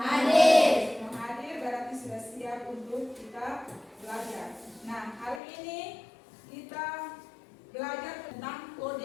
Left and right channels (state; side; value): drops out; right; at 5.4 s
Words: Semua hadir berarti sudah siap untuk kita belajar. Nah, hari ini kita belajar tentang